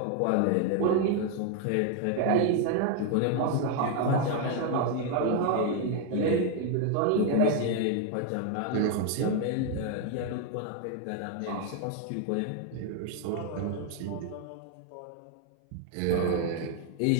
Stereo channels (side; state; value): both; different; correlation 0.01